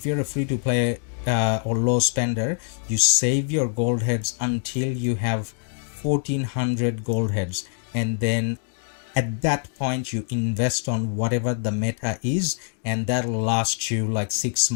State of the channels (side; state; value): right; silent; digital silence